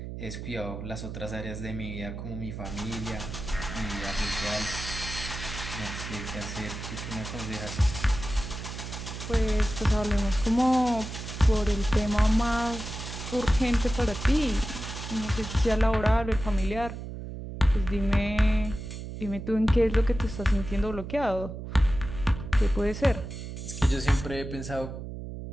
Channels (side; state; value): right; noise; hum, 8 dB below the sound